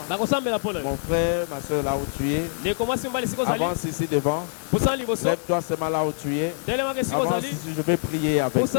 Mon frère, ma soeur, là où tu es. Avance ici devant. Lève-toi seulement là où tu es. Avance ici, je vais prier avec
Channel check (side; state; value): right; silent; digital silence